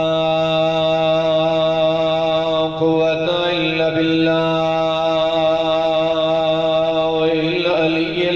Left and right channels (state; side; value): noise; left; rumble, 22 dB below the sound